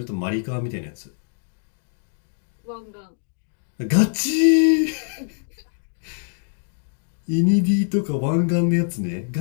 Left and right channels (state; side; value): silent; right; digital silence